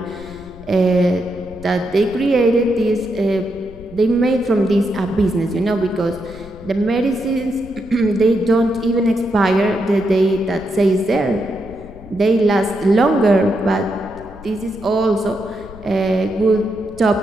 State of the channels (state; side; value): noise; left; rumble, 19 dB below the sound